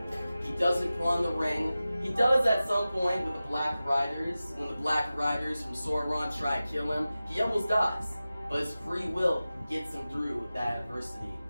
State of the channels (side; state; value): both; inverted; correlation -0.95